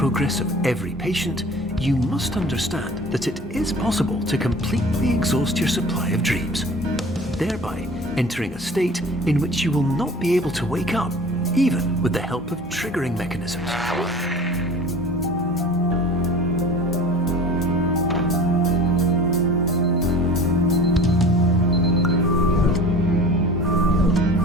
of every patient, you must understand that it is possible to completely exhaust your supply of dreams, thereby entering a state in which you will not be able to wake up, even with the help of triggering mechanisms.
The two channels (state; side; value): normal; both; correlation 0.42